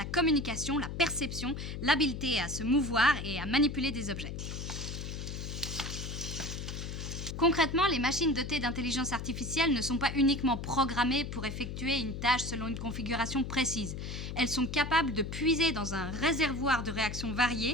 communication, la perception, l'habileté à se mouvoir et à manipuler des objets. Concrètement, les machines dotées d'intelligence artificielle ne sont pas uniquement programmées pour effectuer une tâche selon une configuration précise. Elles sont capables de puiser dans un réservoir de réactions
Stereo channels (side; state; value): left; noise; hum, 6 dB below the sound